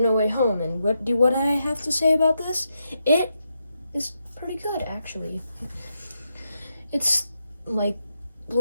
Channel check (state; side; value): inverted; both; correlation -0.83